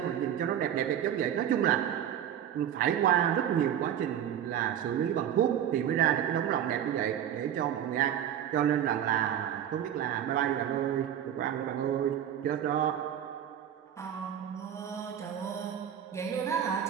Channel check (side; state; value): left; quieter; 10.0 dB